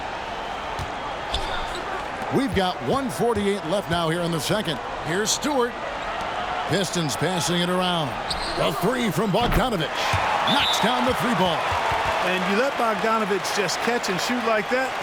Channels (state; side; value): identical; both; correlation 1.00